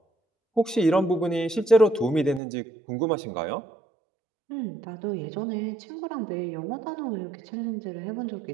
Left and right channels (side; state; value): left; drops out; at 2.4 s